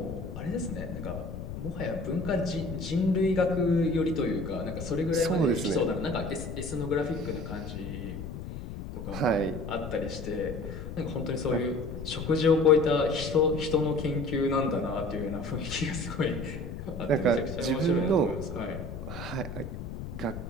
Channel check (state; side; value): noise; left; rumble, 8 dB below the sound